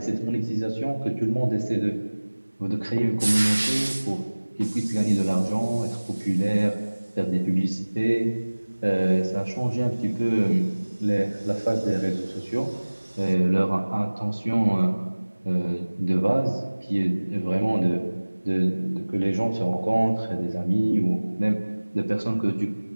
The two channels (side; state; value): both; inverted; correlation -1.00